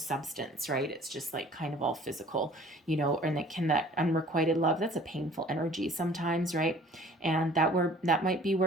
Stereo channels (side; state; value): both; normal; correlation 0.51